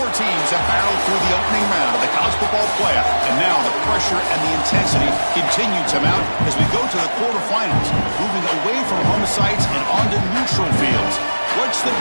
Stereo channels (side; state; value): both; inverted; correlation -1.00